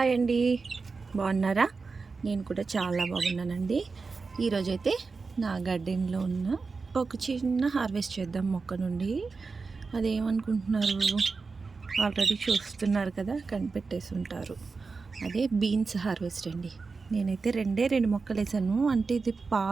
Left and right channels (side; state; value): left; quieter; 4.4 dB